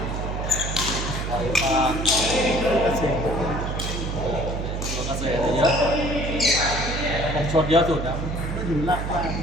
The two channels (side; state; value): right; noise; hum, 3 dB below the sound